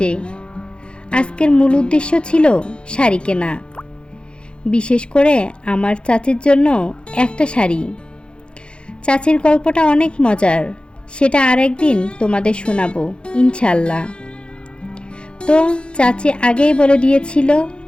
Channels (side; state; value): right; late; 0.055 ms